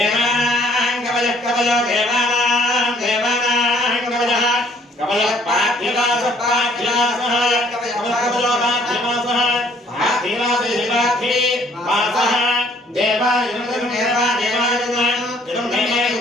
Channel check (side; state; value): both; normal; correlation 0.61